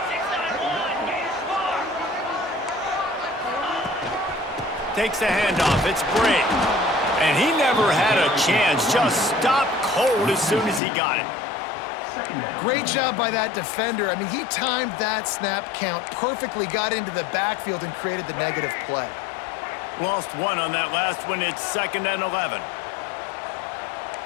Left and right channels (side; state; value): right; drops out; at 10.8 s